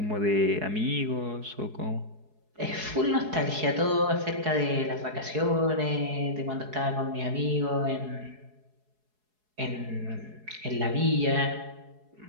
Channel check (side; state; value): left; late; 4.7 ms